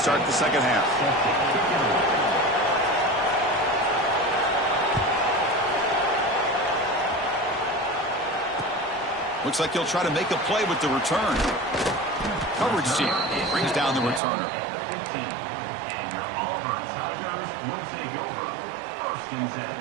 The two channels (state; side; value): drops out; left; at 14.2 s